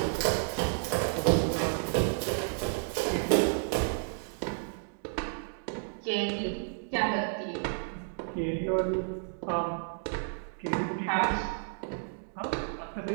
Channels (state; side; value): silent; left; digital silence